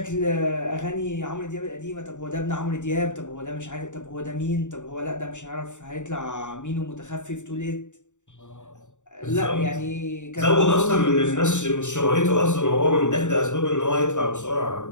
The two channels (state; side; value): late; right; 0.85 ms